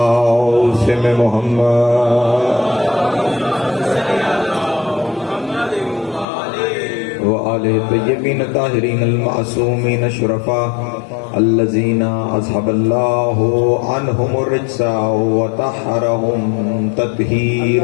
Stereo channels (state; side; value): drops out; right; at 6.2 s